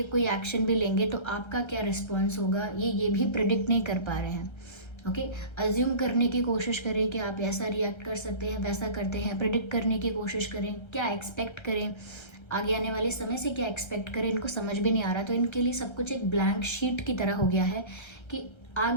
कोई एक्शन भी लेंगे तो आपका क्या रिस्पॉन्स होगा, ये भी प्रिडिक्ट नहीं कर पा रहे हैं। ओके, अज्यूम करने की कोशिश करें कि आप ऐसा रिएक्ट कर सकते हैं, वैसा करते हैं, प्रिडिक्ट करने की कोशिश करें, क्या एक्सपेक्ट करें, आगे आने वाले समय से क्या एक्सपेक्ट करें, इनको समझ भी नहीं आ रहा। तो इनके लिए सब कुछ एक ब्लैंक शीट की तरह हो गया है कि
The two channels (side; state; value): right; late; 1.3 ms